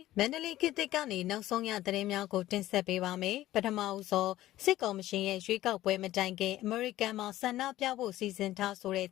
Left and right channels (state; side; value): quieter; right; 14.9 dB